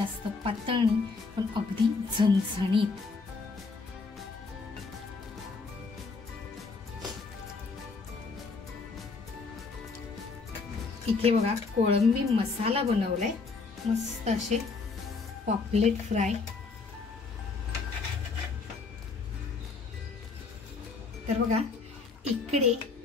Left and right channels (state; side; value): quieter; right; 4.3 dB